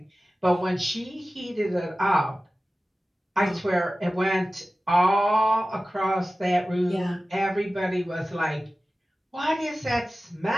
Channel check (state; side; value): normal; both; correlation 0.96